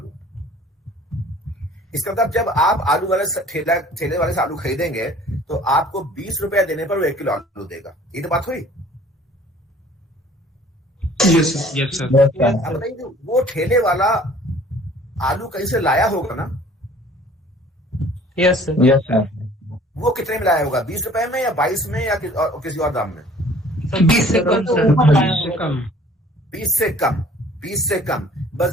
इसका मतलब जब आप आलू वाले ठेले वाले से आलू खरीदेंगे तो आपको 20 रुपए देने पर वो 1 किलो आलू देगा। ये तो बात हुई। Yes, sir. Yes, sir. अब बताइए, वो ठेले वाला आलू कहीं से लाया होगा ना? Yes, sir. Yes, sir. वो कितने में लाया होगा? 20 रुपए में या 22 में या किसी और दाम में? 20 से कम सर। 20 से कम, 20 से कम।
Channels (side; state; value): both; normal; correlation 0.52